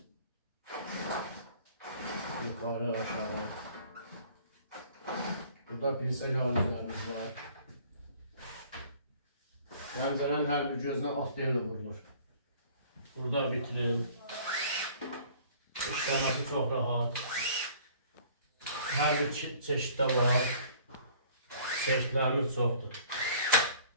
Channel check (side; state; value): both; inverted; correlation -0.53